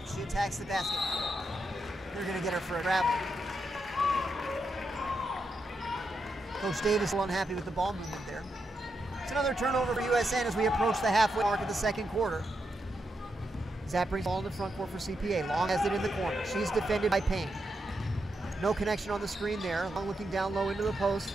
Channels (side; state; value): both; normal; correlation 0.84